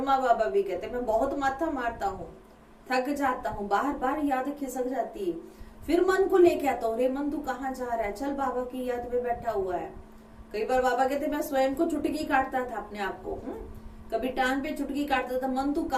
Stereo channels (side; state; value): both; identical; correlation 1.00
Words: बाबा भी कहते मैं बहुत माथा मारता हूँ, थक जाता हूँ, बार बार याद खिसक जाती है। फिर मन को लेके आता हूँ, रे मन तू कहाँ जा रहा है, चल बाबा की याद में बैठा हुआ है। कई बार बाबा कहते मैं स्वयं को चुटकी काटता था अपने आप को, कभी टांग पे चुटकी काटता था, मन तू